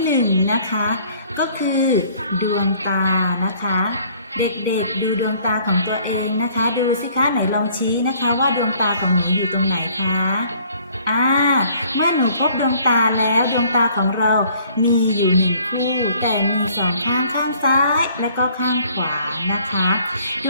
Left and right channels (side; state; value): both; inverted; correlation -0.58